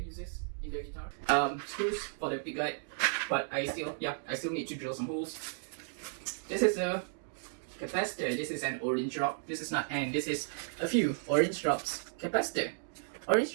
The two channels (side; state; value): left; silent; digital silence